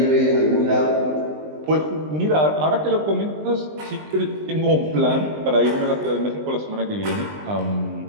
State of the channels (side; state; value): left; late; 20 ms